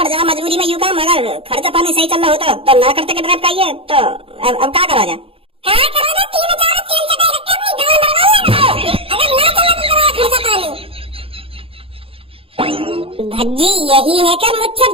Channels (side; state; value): left; late; 0.27 ms